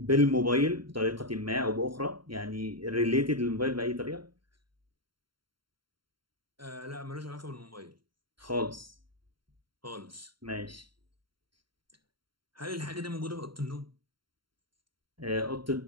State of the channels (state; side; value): late; left; 0.73 ms